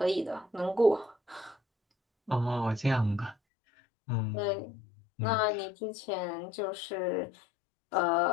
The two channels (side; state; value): right; drops out; at 3.4 s